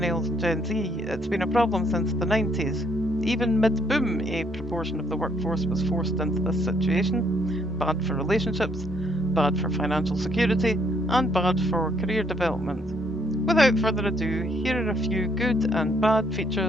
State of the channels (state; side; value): normal; both; correlation 0.69